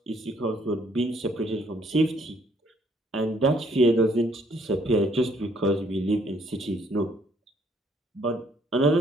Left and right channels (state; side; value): normal; both; correlation 0.66